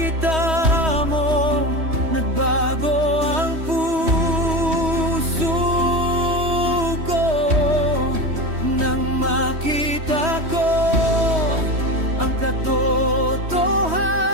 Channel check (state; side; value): late; left; 3.1 ms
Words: mo, nagbago ang puso ko. Nang makita ko ang